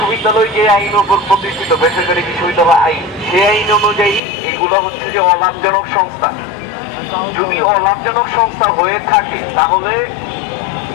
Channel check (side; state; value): right; drops out; at 4.2 s